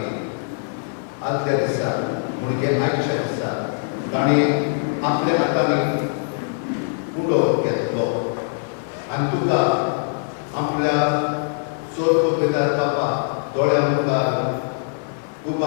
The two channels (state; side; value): silent; right; 61 dB below the other